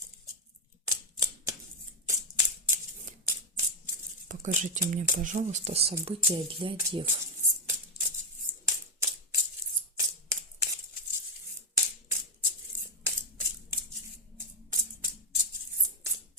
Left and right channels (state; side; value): normal; both; correlation 0.04